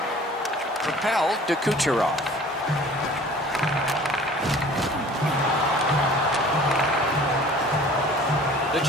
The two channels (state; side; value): normal; both; correlation 0.48